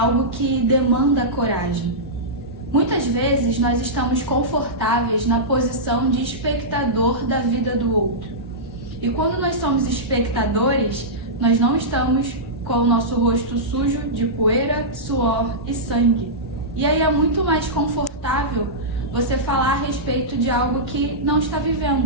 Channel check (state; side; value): normal; both; correlation -0.14